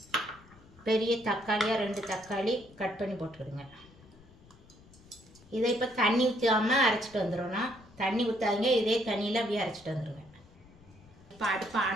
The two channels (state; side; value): noise; left; rumble, 24 dB below the sound